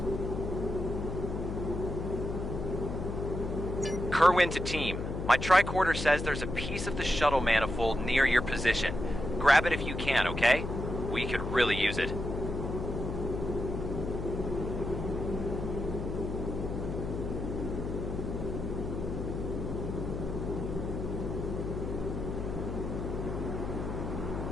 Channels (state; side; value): noise; left; hum, 4 dB below the sound